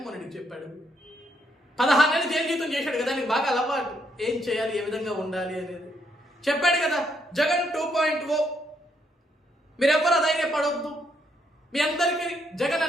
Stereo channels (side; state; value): both; normal; correlation 0.74